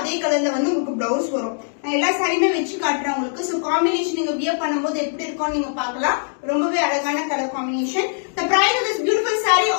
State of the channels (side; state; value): right; silent; digital silence